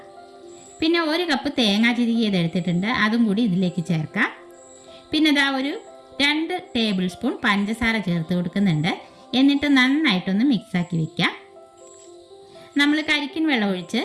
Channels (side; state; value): both; identical; correlation 1.00